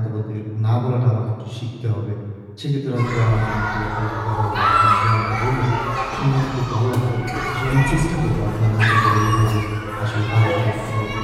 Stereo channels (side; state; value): both; identical; correlation 1.00